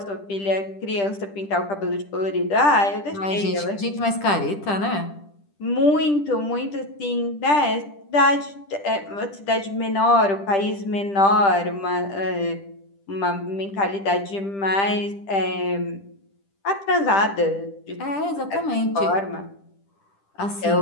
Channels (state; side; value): late; right; 10 ms